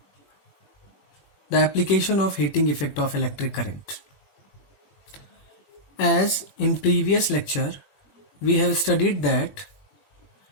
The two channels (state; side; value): late; right; 21 ms